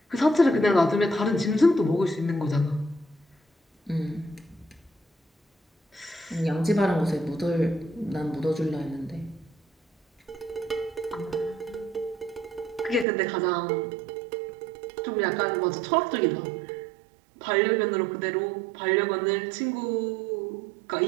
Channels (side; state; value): left; drops out; at 13.1 s